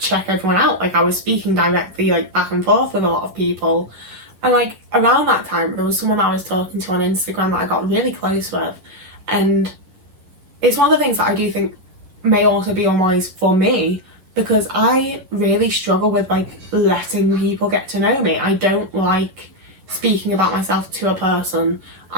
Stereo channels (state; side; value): late; left; 11 ms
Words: everyone out, like I was speaking directly like back and forth with a lot of people, and like around that time there was someone I was talking to on Instagram that I got really close with, and it's one of the things that I do think may also be unwise for me, because I really struggle with like letting people get to know me. I don't like speaking about myself to a person.